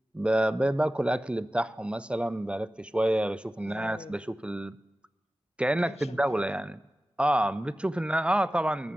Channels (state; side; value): normal; both; correlation 0.95